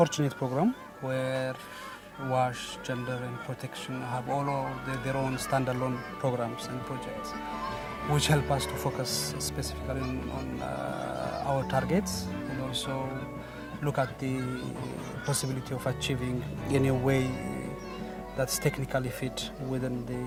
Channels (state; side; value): identical; both; correlation 1.00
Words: program where WASH, gender and protection have all of their own standalone programs and projects, which help us to focus specifically on our targets and also look at the possibility of achieving in a way that's technically fit within